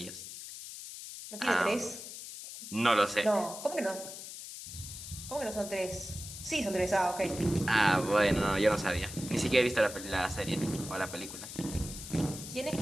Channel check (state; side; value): noise; left; hiss, 11 dB below the sound